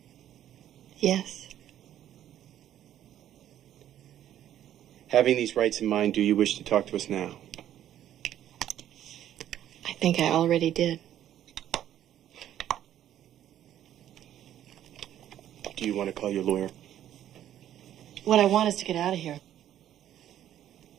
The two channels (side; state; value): left; quieter; 11.4 dB